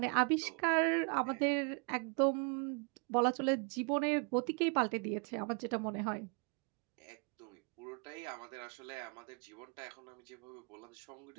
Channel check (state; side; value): quieter; left; 33.9 dB